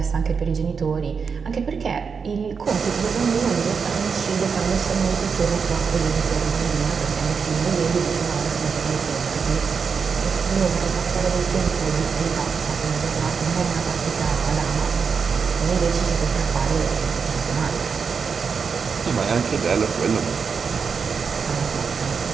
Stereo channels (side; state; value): left; quieter; 5.8 dB